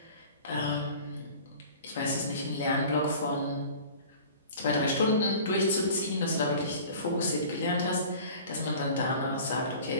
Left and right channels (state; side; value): inverted; both; correlation -0.42